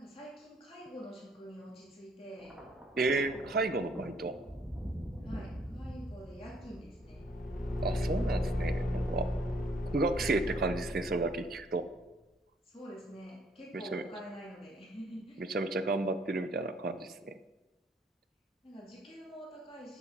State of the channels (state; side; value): normal; both; correlation 0.65